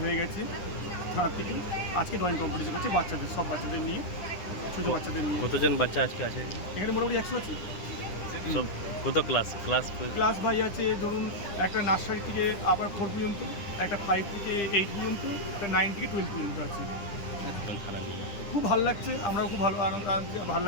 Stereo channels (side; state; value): right; late; 9.9 ms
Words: হয়ে গেছে থানার থেকে। আজকে ড্রয়িং কম্পিটিশন হচ্ছে বাচ্চাদের, সব বাচ্চাদের নিয়ে, ছোটো বাচ্চাদের নিয়ে। কতজন বাচ্চা আজকে আছে এখানে? মোটামুটি 100 আছে। সব কত ক্লাস ভাই আছে, ধরুন একটা নার্সারি থেকে আবার 4 পর্যন্ত, একটা 5 থেকে 8 পর্যন্ত, একটা 9 থেকে 12 পর্যন্ত আছে। খুব ভালো লাগছে, আমরাও খুব ভালো ভালো